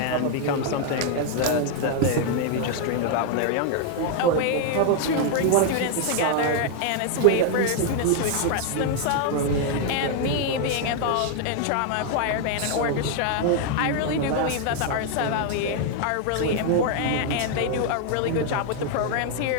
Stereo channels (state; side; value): different; both; correlation 0.00